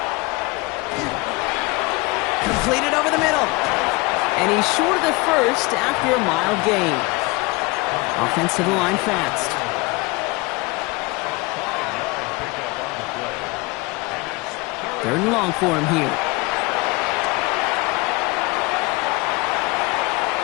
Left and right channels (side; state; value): right; quieter; 24.7 dB